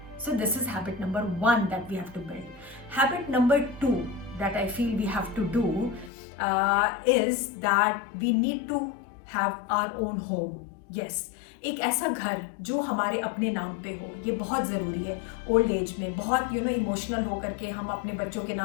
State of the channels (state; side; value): drops out; right; at 6.1 s